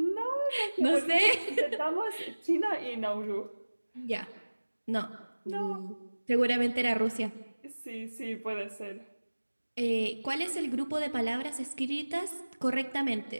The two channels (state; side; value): inverted; both; correlation -1.00